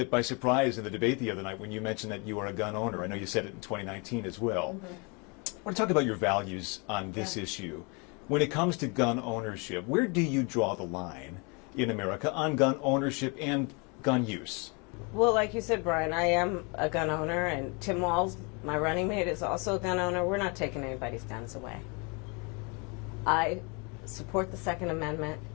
by surprise in the debate the other night when you mentioned that you are a gun owner. I know you said it in 2019 as well. I want to talk about your values on this issue. When it comes to gun ownership, where do you draw the line in America on gun ownership and gun use? Well, like you said, Brian, I am a gun owner, and Tim Walz, my running mate, is also a gun owner. We're not taking anybody's guns away. I support the Second Amendment,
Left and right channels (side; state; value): right; quieter; 31.8 dB